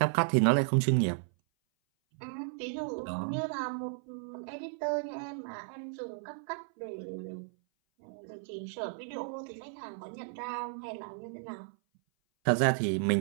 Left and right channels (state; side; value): silent; left; 55 dB below the other